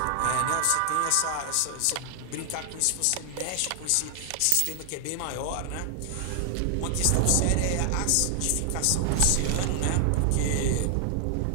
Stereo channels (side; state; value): both; different; correlation 0.00